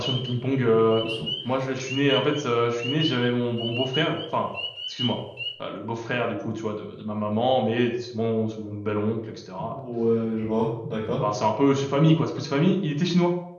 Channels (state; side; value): identical; both; correlation 1.00